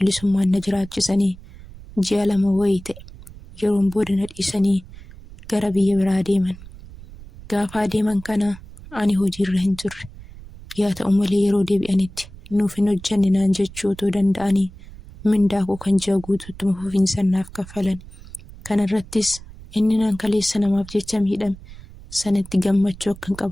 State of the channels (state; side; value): noise; right; rumble, 17 dB below the sound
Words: na jiraachisanii ji'a 2 wayii ta'e. Yeroon booda na dhiisanii gara biyya biraa deeman. Gaafa adeeman kana ani hojiirra hin turre. Yaa ta'u malee yeroo deebi'anitti nuuf hin hojjenne naan jechuu otoo danda'anii mindaa koo kan ji'a guutuutti fufiinsaan naaf kaffalan. Kana irrattis inni nan kaleessa namaaf jecha miidhame sanatti gammachuu akkan